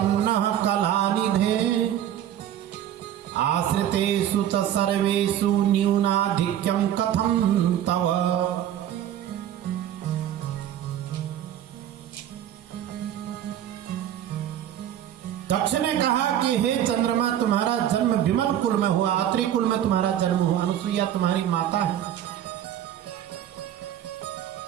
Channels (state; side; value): quieter; left; 10.8 dB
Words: कलानिधे आश्रितेषु च सर्वेषु न्यूनाधिक्यं कथं तव। दक्ष ने कहा कि हे चंद्रमा तुम्हारा जन्म विमल कुल में हुआ, अत्रि कुल में तुम्हारा जन्म हुआ, अनुसुईया तुम्हारी माता है